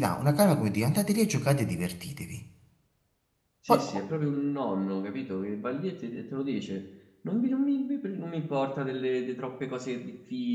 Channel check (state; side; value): identical; both; correlation 1.00